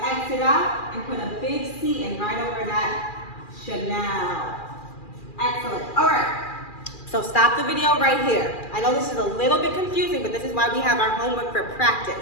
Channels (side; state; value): right; late; 2.4 ms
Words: X it out and put a big C in right over that Chanel. Excellent. All right. So stop the video right here. I know this is a little bit confusing, but this is why we have our homework for